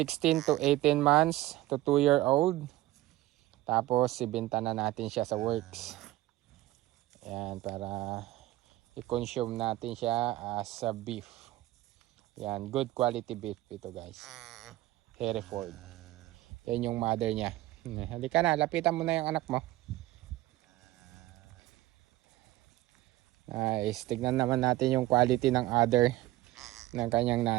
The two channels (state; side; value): quieter; left; 16.6 dB